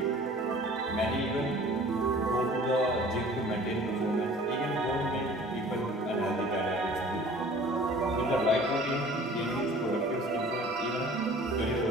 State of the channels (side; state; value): both; normal; correlation 0.47